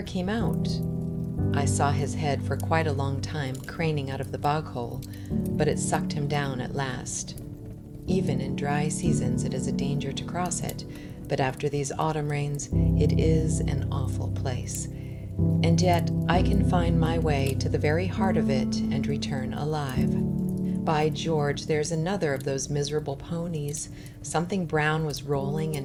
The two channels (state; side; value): identical; both; correlation 1.00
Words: came out. I saw his head for quite a long time craning out of the bog hole, but it sucked him down at last. Even in dry seasons it is a danger to cross it, but after these autumn rains it is an awful place. And yet I can find my way to the very heart of it and return alive. By George, there's another of those miserable ponies. Something brown was rolling